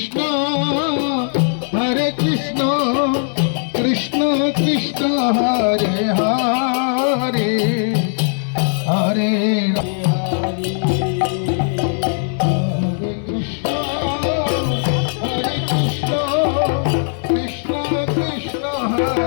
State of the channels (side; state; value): right; silent; 62 dB below the other